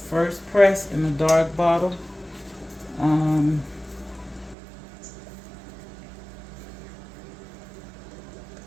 First press in a dark bottle.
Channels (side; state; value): left; drops out; at 4.5 s